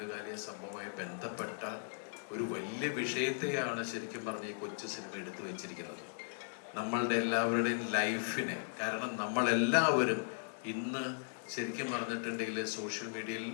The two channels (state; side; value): silent; right; digital silence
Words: സംഭവമായി ബന്ധപ്പെട്ട ഒരു വലിയ വിഷയത്തെയാണ് ശരിക്കും പറഞ്ഞ ഈ കൊച്ചു സിനിമ എടുത്തു വെച്ചിരിക്കുന്നത്. നമ്മളുടെ എല്ലാവരുടെയും ലൈഫിനെ, കാരണം നമ്മളെല്ലാവരും ഇന്ന് ശരിക്കും പറഞ്ഞിട്ടുണ്ടെങ്കിൽ സോഷ്യൽ മീഡിയയിൽ